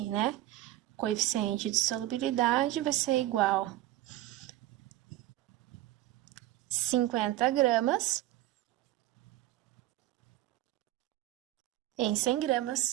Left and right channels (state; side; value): quieter; left; 15.1 dB